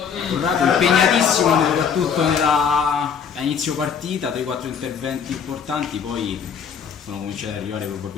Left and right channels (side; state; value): right; quieter; 6.9 dB